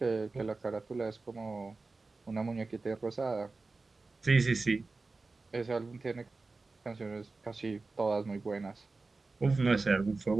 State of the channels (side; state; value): left; quieter; 3.7 dB